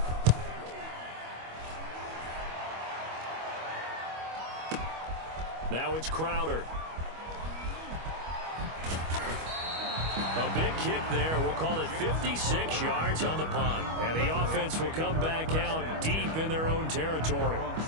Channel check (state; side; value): late; left; 25 ms